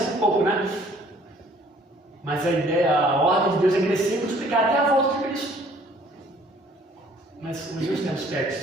um pouco, né? Mas a ideia, a ordem de Deus é crescer e multiplicar até a volta de Cristo. Mas hoje tem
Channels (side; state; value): both; normal; correlation 0.57